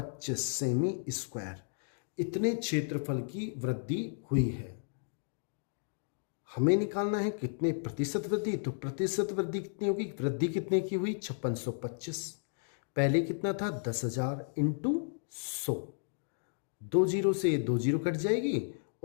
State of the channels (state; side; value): silent; right; digital silence